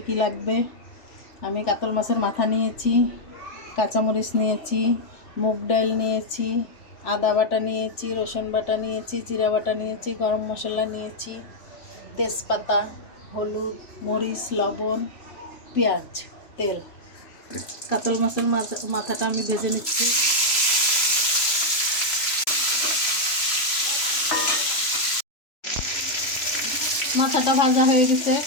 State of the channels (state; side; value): late; right; 3.0 ms